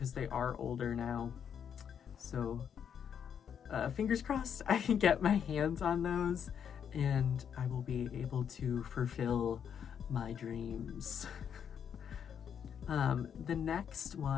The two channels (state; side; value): quieter; right; 8.1 dB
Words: they are older now. So fingers crossed I can get my hands on those and I will be able to fulfill my dreams. The next